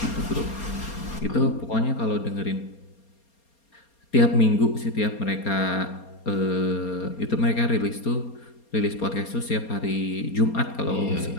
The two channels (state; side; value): late; right; 4.3 ms